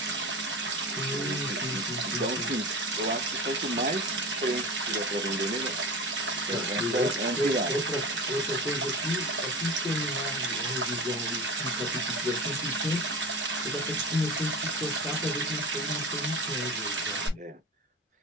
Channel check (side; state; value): both; normal; correlation 0.30